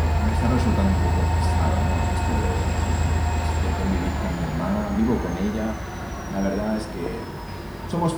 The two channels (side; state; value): both; identical; correlation 1.00